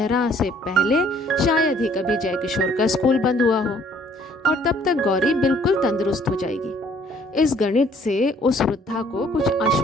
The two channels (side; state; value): both; normal; correlation 0.60